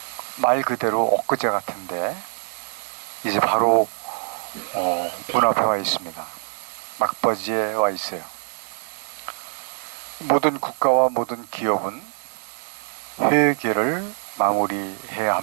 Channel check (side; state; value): left; silent; 63 dB below the other